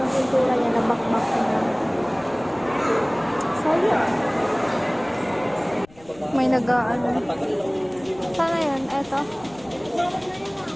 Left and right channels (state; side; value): noise; left; rumble, 26 dB below the sound